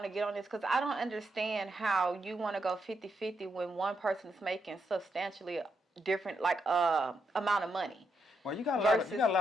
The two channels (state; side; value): normal; both; correlation 0.81